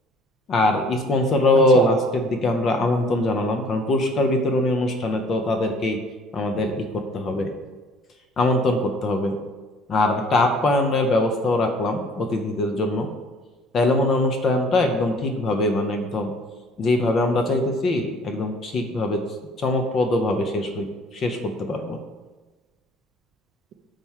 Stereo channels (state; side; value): normal; both; correlation 0.54